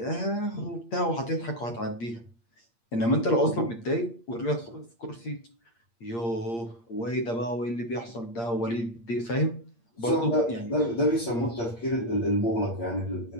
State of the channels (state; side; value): late; right; 8.6 ms